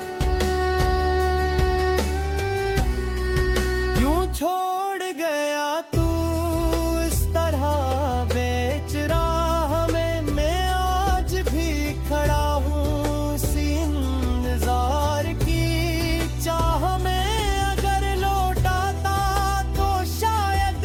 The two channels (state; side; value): identical; both; correlation 1.00